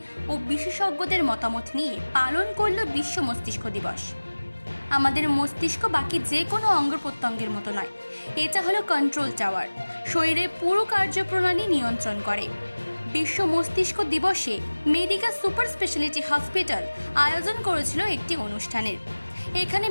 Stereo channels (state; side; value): inverted; both; correlation -1.00